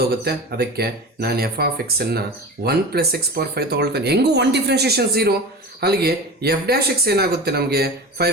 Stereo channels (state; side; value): normal; both; correlation 0.31